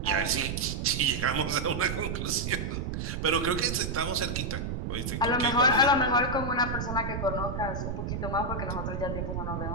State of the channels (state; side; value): noise; right; rumble, 3 dB below the sound